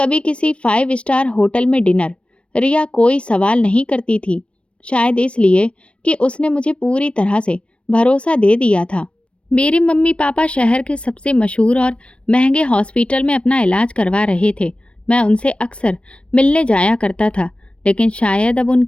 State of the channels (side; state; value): right; late; 0.060 ms